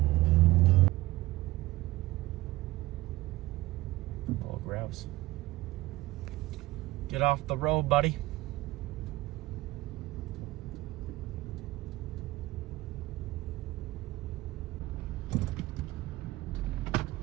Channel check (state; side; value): quieter; left; 18.3 dB